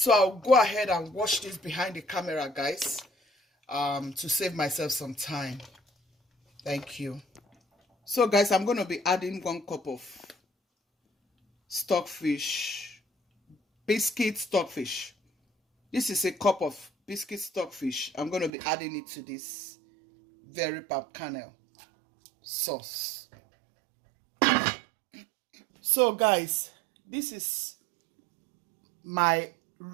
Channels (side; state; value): left; drops out; at 18.5 s